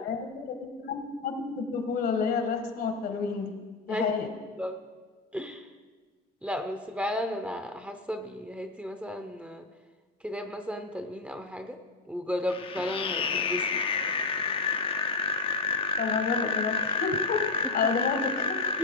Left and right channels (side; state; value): right; quieter; 3.7 dB